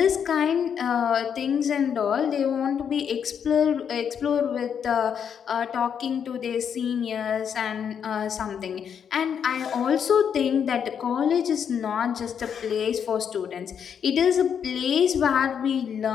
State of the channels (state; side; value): quieter; right; 7.8 dB